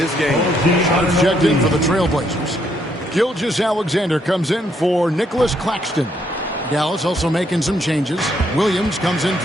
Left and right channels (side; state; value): both; normal; correlation 0.73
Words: game. Shots checked in for the Trailblazers. Gilgeous-Alexander comes in for Nicholas Claxton. Dallas also making some changes. Williams comes in